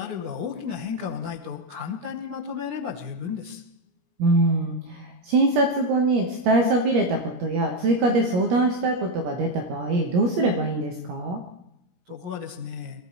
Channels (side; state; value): left; late; 17 ms